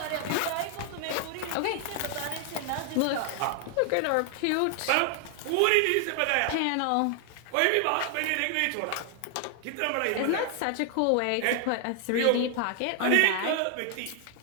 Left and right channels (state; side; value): different; both; correlation 0.00